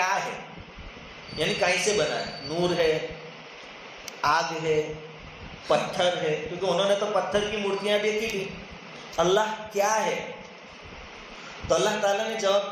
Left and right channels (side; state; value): both; identical; correlation 1.00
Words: ہے، یعنی کہیں سے بنا ہے، نور ہے، آگ ہے، پتھر ہے، کیونکہ انہوں نے تو پتھر کی مورتیاں دیکھی تھی. اللہ کیا ہے؟ تو اللہ تعالیٰ نے